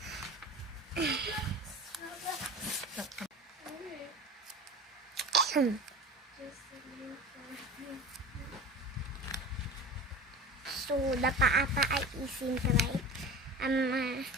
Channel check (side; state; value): both; normal; correlation 0.35